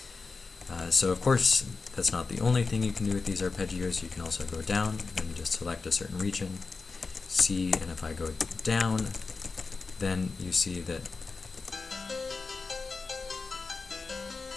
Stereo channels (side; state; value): right; quieter; 4.3 dB